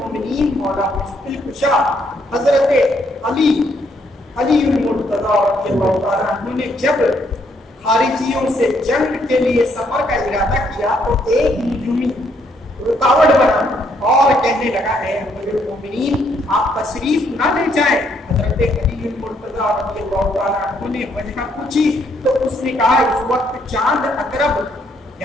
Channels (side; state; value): both; normal; correlation 0.71